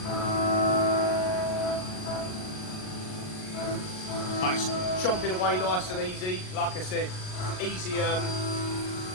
But it's chomping away nice and easy. Like I said, easy, a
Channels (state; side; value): late; right; 38 ms